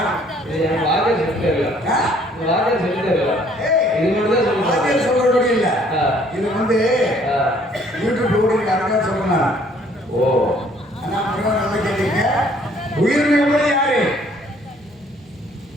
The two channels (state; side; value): normal; both; correlation 0.61